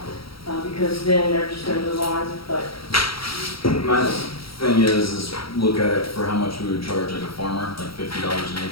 because then they're just gonna move on, but, My thing is look at it for how much we would charge like a farmer, like $50 an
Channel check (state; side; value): late; right; 0.75 ms